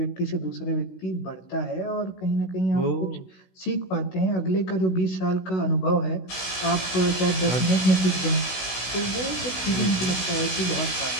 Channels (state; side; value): late; right; 16 ms